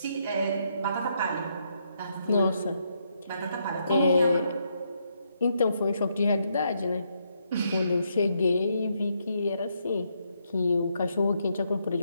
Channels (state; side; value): inverted; both; correlation -0.77